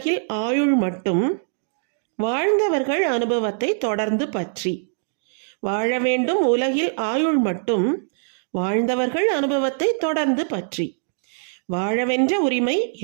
ஆயுள் மட்டும், வாழ்ந்தவர்கள் அனுபவத்தை தொடர்ந்து பற்றி. வாழ வேண்டும் உலகில் ஆயுள் மட்டும், வாழ்ந்தவர்கள் அனுபவத்தை தொடர்ந்து பற்றி. வாழவென்ற உரிமை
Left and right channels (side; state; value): left; silent; digital silence